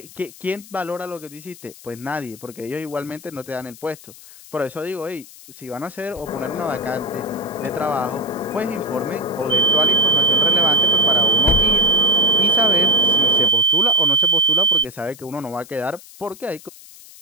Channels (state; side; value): noise; left; hiss, 20 dB below the sound